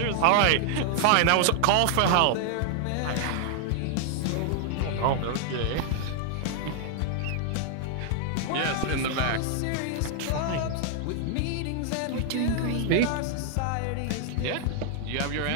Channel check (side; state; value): both; different; correlation 0.00